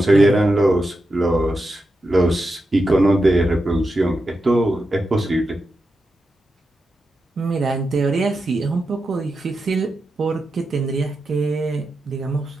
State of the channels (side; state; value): both; normal; correlation 0.89